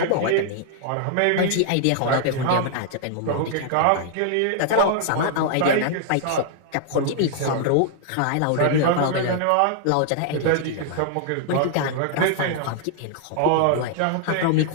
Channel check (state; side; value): different; both; correlation -0.01